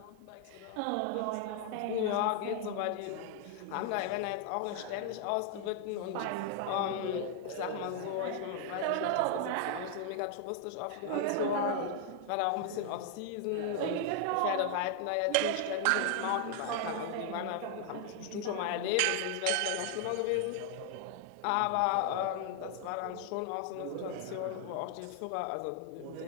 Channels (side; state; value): both; different; correlation 0.00